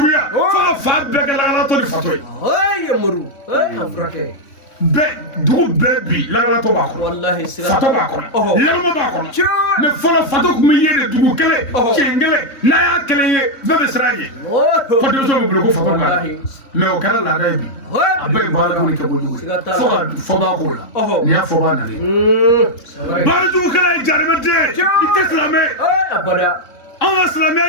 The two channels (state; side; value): late; right; 3.6 ms